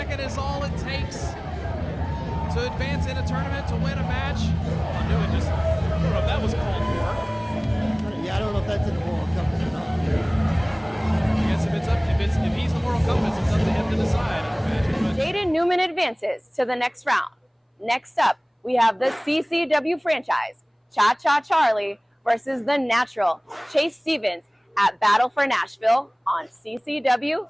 Is all it takes to advance in a tournament, to win a match. I knew it just, I don't know if that was called for. Yeah, I don't know if that's in the moral compass or not. I guess if he's the moral compass, it's up to him to decide, I imagine. Jaden Newman advances to the next round. Next up, we have the CCW franchise, Cha Cha Charlie versus the Natural, Chase Stevens, at Battle for Nashville on CCW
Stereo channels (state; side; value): identical; both; correlation 1.00